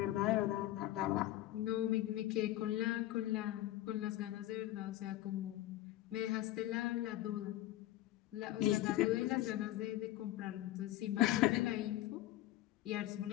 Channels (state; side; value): quieter; right; 14.9 dB